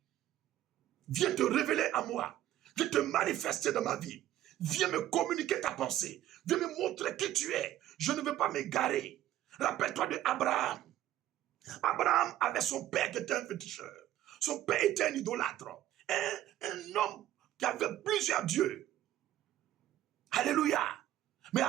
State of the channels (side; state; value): left; quieter; 13.2 dB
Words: viens te révéler à moi, viens te manifester dans ma vie, viens me communiquer ta pensée, viens me montrer qui tu es. Je ne veux pas m'égarer. Rappelle-toi de Abraham. Abraham avait son père qui était un féticheur. Son père était un idolâtre. Un homme qui avait plusieurs dieux. Alléluia. Mais